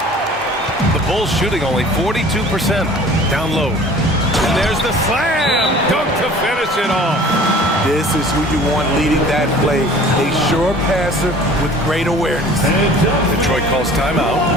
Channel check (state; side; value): normal; both; correlation 0.47